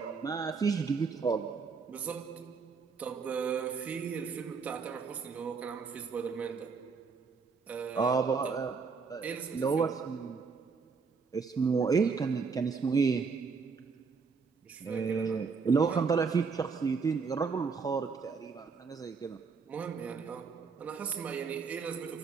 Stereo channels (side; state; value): left; quieter; 5.2 dB